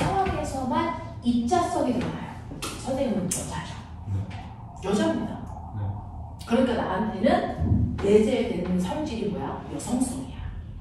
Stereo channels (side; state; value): both; identical; correlation 1.00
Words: 입자성이 드러나요. 선생님은 여자죠. 여자입니다. 그러니까 나한테는 내재되는 성질이 뭐야? 여성성이야.